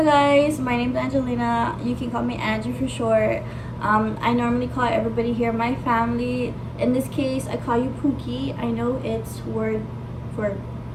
guys, my name is Angelina. You can call me Angie for short. I normally call everybody here my family. In this case, I call you Pookie. I know it's word for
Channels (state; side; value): identical; both; correlation 1.00